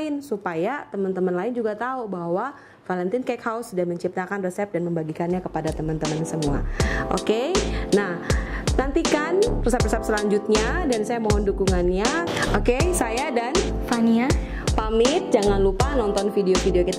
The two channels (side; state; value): both; identical; correlation 1.00